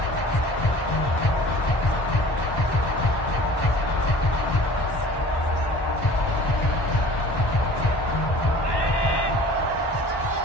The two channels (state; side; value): late; right; 1.1 ms